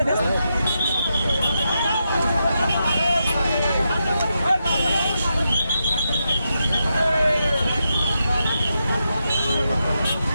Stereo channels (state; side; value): inverted; both; correlation -0.85